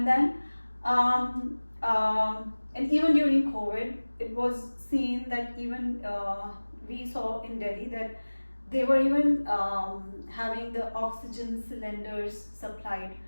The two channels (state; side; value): inverted; both; correlation -1.00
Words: then and even during COVID, it was seen that even we saw in Delhi that they were even having the oxygen cylinders supplied.